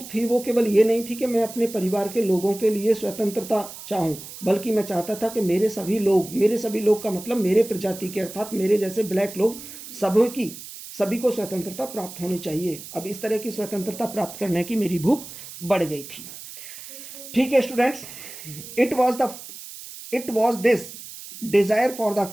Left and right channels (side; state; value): right; noise; hiss, 13 dB below the sound